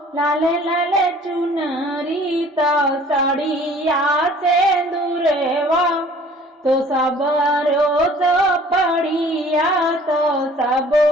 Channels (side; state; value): both; normal; correlation 0.51